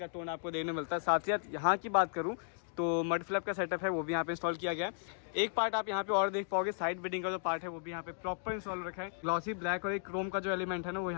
टोन आपको देखने मिलता है। साथ ही साथ यहाँ की बात करूँ तो मड फ्लैप का सेटअप है वो भी यहाँ पे इंस्टॉल किया गया है। एक पार्ट आप यहाँ पे और देख पाओगे, साइड बिडिंग का जो पार्ट है वो भी यहाँ पे प्रॉपर इंस्टॉल रखा है। ग्लॉसी ब्लैक और एक क्रोम का जो एलिमेंट है ना वो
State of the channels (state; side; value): silent; right; digital silence